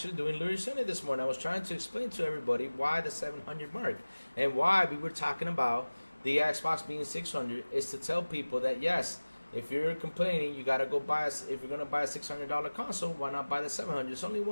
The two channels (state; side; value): inverted; both; correlation -1.00